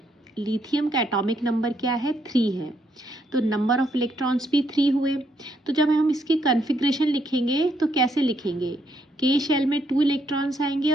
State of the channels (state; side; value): normal; both; correlation 0.74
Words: लिथियम का एटॉमिक नंबर क्या है, 3 है, तो नंबर ऑफ इलेक्ट्रॉन्स भी 3 हुए। तो जब हम इसकी कन्फिग्रेशन लिखेंगे तो कैसे लिखेंगे, के शेल में 2 इलेक्ट्रॉन्स आएंगे